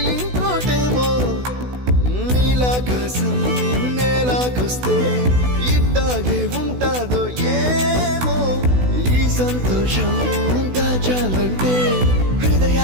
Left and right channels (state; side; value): late; left; 16 ms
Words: ఇంకోటేమో నీలాకాశం నేలాకొస్తే ఇట్టాగే ఉంటాదో ఏమో ఈ సంతోషం దాచాలంటే